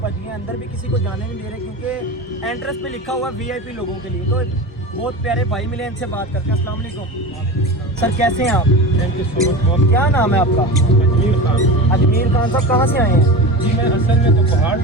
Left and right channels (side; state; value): both; normal; correlation 0.28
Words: बज गए। अंदर भी किसी को जाने नहीं दे रहे क्योंकि एंट्रेंस पे लिखा हुआ VIP लोगों के लिए। तो बहुत प्यारे भाई मिले, इनसे बात करते हैं। अस्सलाम वालेकुम सर, कैसे हैं आप? Thank you so much. क्या नाम है आपका? अजमीर खान। अजमीर खान साहब, कहाँ से आए हैं? जी मैं असल में तो पहाड़